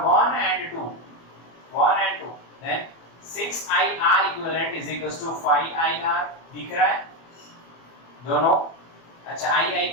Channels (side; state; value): right; late; 24 ms